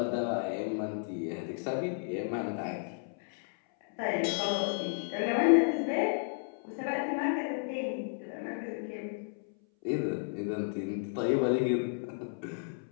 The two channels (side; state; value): right; silent; 56 dB below the other